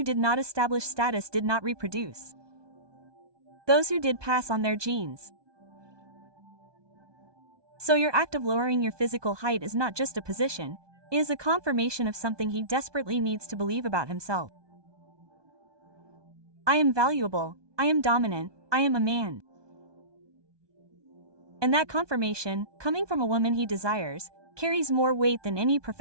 did not establish status did not reproduce. Those who did pass on their genes. So your act of lowering your physical height is not just a position, it is a confirmation of something he desperately needs to believe about himself. I am valuable, I am dominant, I am a man. And that confirmation, coming from a woman he desires, carries more weight than any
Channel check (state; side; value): late; left; 1.2 ms